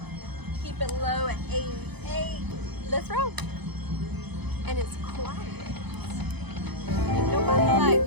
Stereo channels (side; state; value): left; late; 0.98 ms